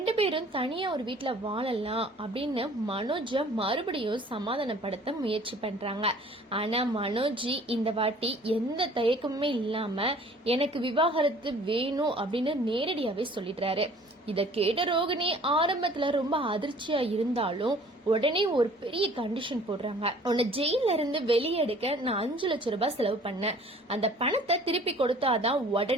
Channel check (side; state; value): both; normal; correlation 0.52